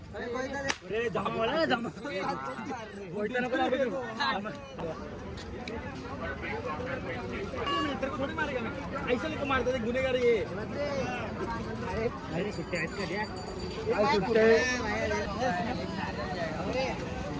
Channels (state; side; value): identical; both; correlation 1.00